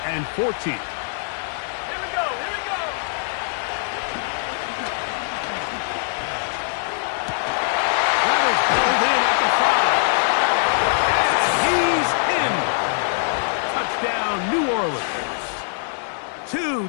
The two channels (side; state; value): right; silent; digital silence